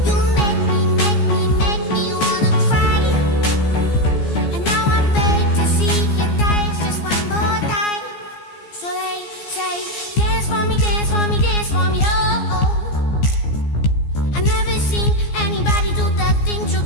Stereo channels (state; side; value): late; right; 14 ms